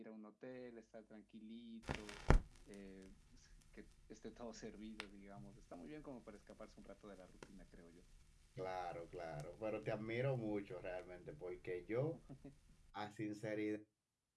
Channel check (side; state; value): both; identical; correlation 1.00